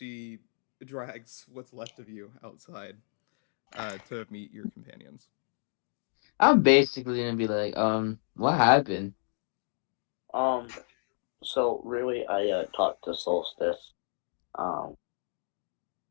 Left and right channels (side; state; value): right; silent; digital silence